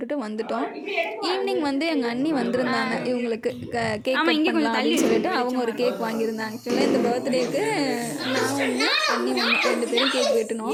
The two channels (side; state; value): both; identical; correlation 1.00